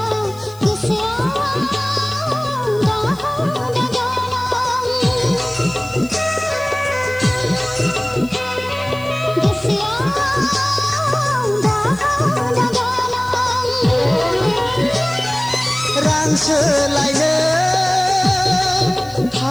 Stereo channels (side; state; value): left; noise; hiss, 23 dB below the sound